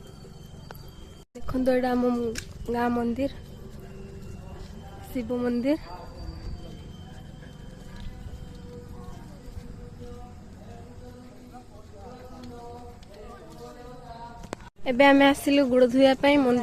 देखंतु एटा हम गाँ मंदिर शिव मंदिर। एबे आमे आसिलु गुड़ धुया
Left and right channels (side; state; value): both; identical; correlation 1.00